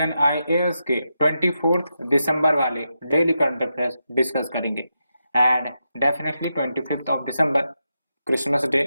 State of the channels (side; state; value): both; inverted; correlation -0.87